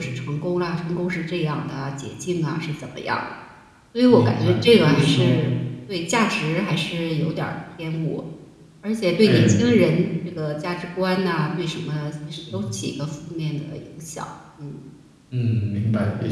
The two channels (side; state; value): both; identical; correlation 1.00